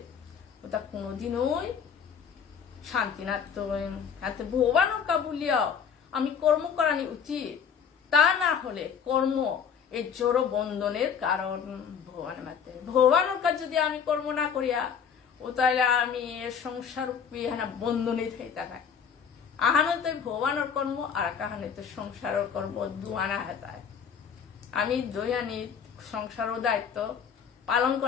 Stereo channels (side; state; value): right; quieter; 7.1 dB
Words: ওটা কোনোদিনই শান্তি না তো হাতে ভগবানের কাবুলিয়াও আমি কর্ম করানি উচিত তা না হলে কর্ম এই জড় বন্ধনের কারণ ভগবানের মাতে ভগবানের কাজ যদি আমি কর্ম না করিয়া ও তাহলে আমি সংসার বন্ধনে থেকে থাকায় আহানো তো ভগবানের কর্ম আর কাহানে তো সংসারের কর্ম দুয়ানা হেতায় আমি দৈয়ানি সংসারও দায়িত্ব পালন